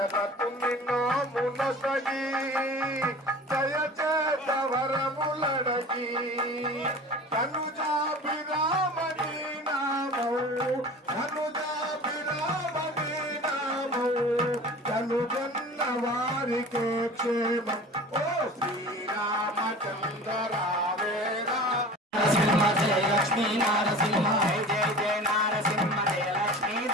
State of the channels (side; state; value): both; normal; correlation 0.39